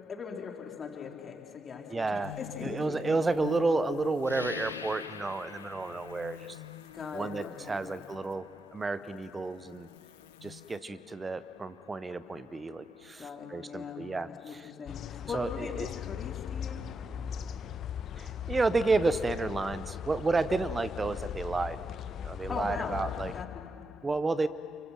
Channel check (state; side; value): normal; both; correlation 0.85